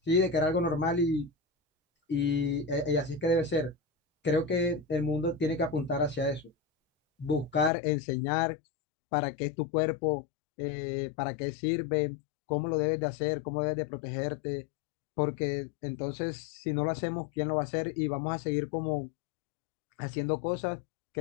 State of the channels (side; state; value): right; drops out; at 7.7 s